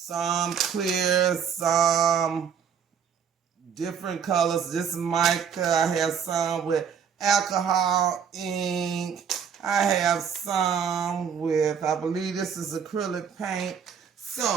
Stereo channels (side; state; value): left; quieter; 7.4 dB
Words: clear, some different colors. This is mica. I have some with alcohol ink. I have some with, I believe this is acrylic paint.